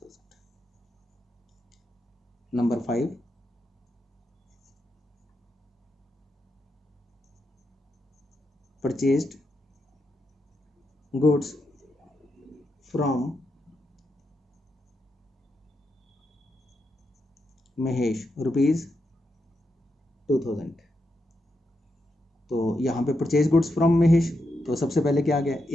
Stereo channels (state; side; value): normal; both; correlation 0.84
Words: Number 5, purchased goods from Mahesh ₹2000। तो यहाँ पे परचेज गुड्स फ्रॉम महेश, तो सबसे पहले क्या आ गया,